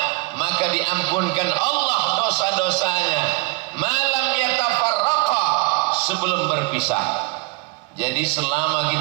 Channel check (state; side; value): quieter; left; 26.6 dB